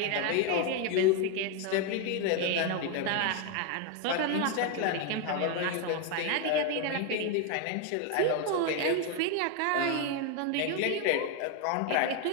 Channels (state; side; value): different; both; correlation 0.01